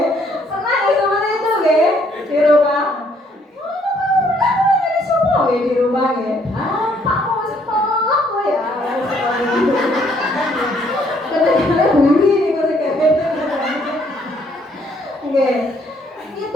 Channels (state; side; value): normal; both; correlation 0.67